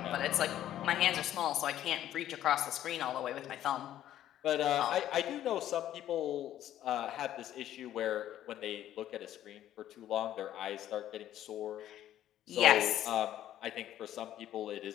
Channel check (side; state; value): right; quieter; 12.1 dB